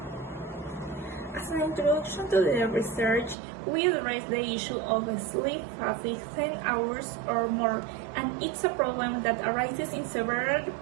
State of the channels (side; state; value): left; drops out; at 3.4 s